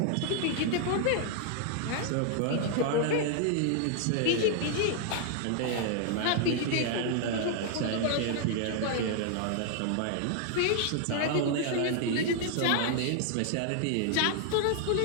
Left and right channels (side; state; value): both; different; correlation 0.00